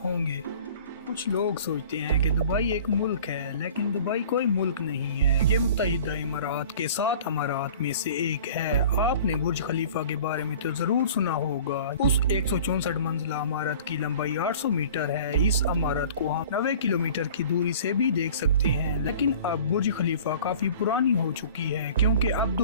होंगे। कुछ लोग सोचते हैं कि दुबई एक मुल्क है, लेकिन दुबई कोई मुल्क नहीं है। ये मुत्तहिदा इमारात के 7 अमारात में से एक है। आपने बुर्ज खलीफा के बारे में तो जरूर सुना होगा। उस 164 मंजिला इमारत की लंबाई 800 मीटर है। इस इमारत को हम 90 किलोमीटर की दूरी से भी देख सकते हैं। लेकिन अब बुर्ज खलीफा काफी पुरानी हो चुकी है, क्योंकि अब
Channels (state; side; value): inverted; both; correlation -0.45